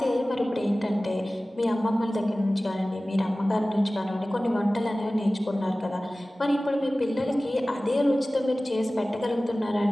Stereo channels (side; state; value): both; normal; correlation 0.97